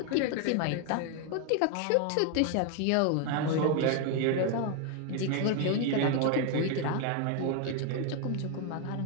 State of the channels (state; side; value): different; both; correlation 0.01